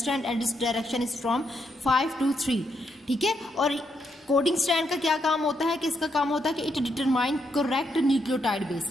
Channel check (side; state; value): both; normal; correlation 0.78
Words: एंड इस डायरेक्शन इज फ्रॉम 5 to 3, ठीक है। और कोडिंग स्ट्रैंड का क्या काम होता है, कि इसका काम होता है कि it determine correct nucleotide